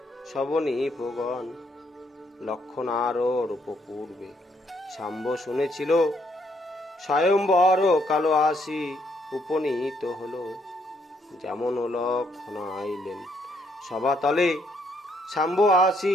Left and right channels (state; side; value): normal; both; correlation 0.72